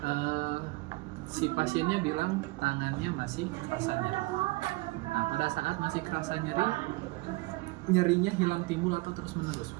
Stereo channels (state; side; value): quieter; left; 23.1 dB